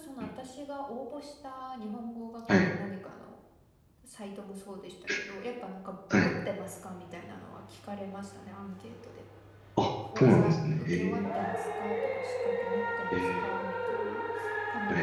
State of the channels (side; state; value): both; identical; correlation 1.00